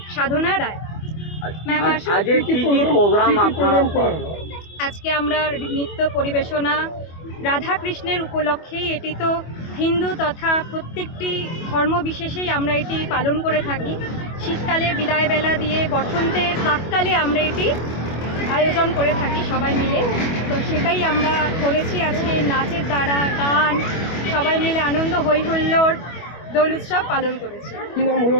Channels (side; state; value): right; late; 25 ms